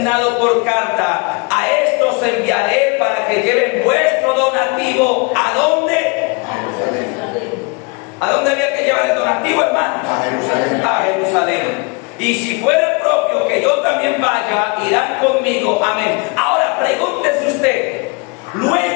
por carta, a estos enviaré para que lleven vuestro donativo. ¿A dónde? ¿A dónde había que llevar el donativo, hermano? A Jerusalén. A Jerusalén. Y si fuera propio que yo también vaya, irán conmigo. Amén. Ahora pregúntese usted.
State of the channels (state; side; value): quieter; right; 30.4 dB